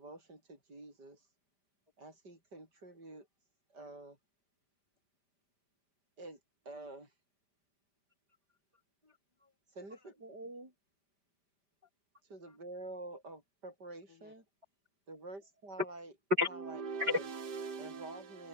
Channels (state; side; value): late; left; 5.0 ms